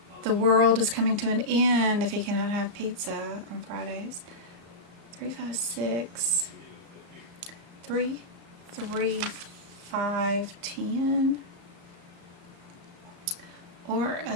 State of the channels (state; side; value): late; left; 35 ms